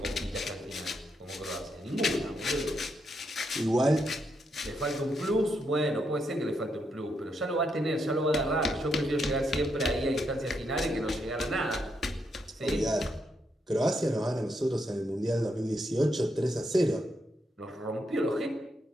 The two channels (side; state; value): both; normal; correlation 0.80